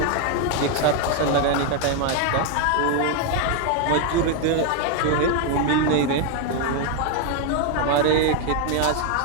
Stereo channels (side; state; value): both; different; correlation 0.01